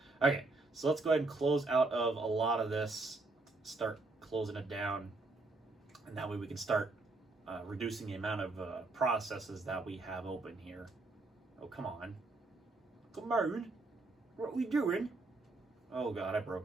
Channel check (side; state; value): left; quieter; 3.2 dB